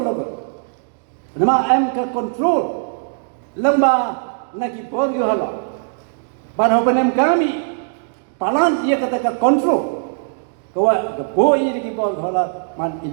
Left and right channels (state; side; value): silent; left; digital silence